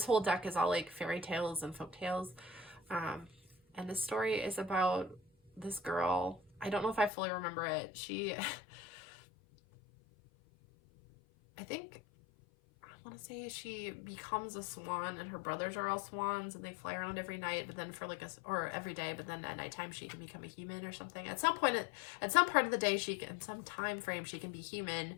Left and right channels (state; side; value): drops out; right; at 7.1 s